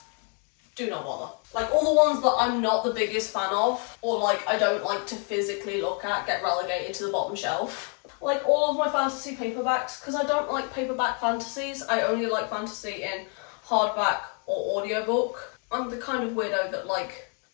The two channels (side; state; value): right; quieter; 39.8 dB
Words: Do not bother. Like, all the ones that I'm not the biggest fan of, or like I don't like to physically look at, get relegated to the bottom shelf. Like all of my fantasy paperbacks, because I don't like paperback fantasies, I only like fantasy in hardback or audiobook. I'm the kind of weirdo that, like,